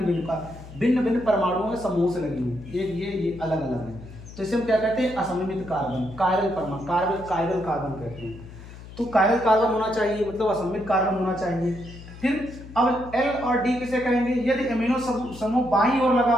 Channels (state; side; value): noise; left; hum, 16 dB below the sound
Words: भिन्न भिन्न परमाणुओं के समूह से लगी हुई, एक ये अलग अलग है, तो इसे हम क्या कहते हैं असममित कार्बन, कायरल कार्बन कहते हैं। तो कायरल कार्बन होना चाहिए, मतलब असममित कार्बन होना चाहिए। फिर अब L और D किसे कहेंगे, यदि एमिनो समूह बाईं ओर लगा